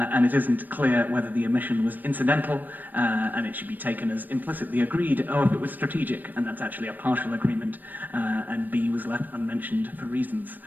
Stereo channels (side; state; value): left; late; 0.089 ms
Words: it isn't clear whether the omission was incidental, and it should be taken as implicitly agreed, or if it was strategic, and that's actually a partial agreement, and B was left unmentioned for reasons.